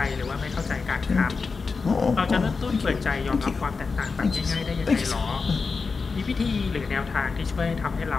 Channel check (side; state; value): right; quieter; 4.7 dB